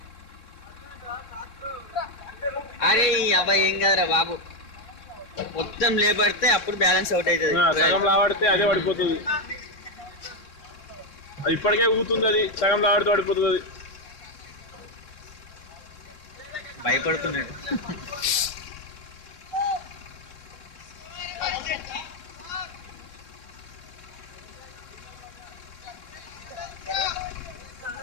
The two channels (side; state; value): right; late; 3.6 ms